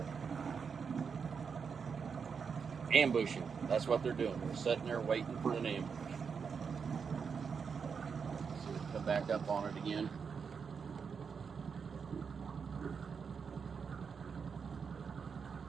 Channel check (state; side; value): quieter; left; 6.0 dB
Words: Ambushing. That's what they're doing. They're sitting there waiting for an ambush. So come back up on it again.